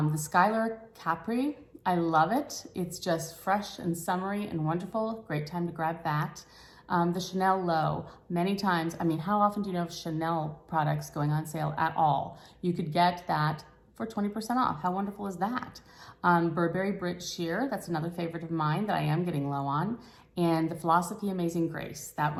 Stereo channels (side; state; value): both; identical; correlation 1.00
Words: Skylar Capri, I love it. It's just fresh and summery and wonderful. Great time to grab that. The Chanel Low, many times, how often do you know of Chanel products going on sale at all? You could get that for 20% off. How wonderful is that? Burberry Brit Sheer, that's another favorite of mine that I am getting low on. And the Philosophy Amazing Grace, that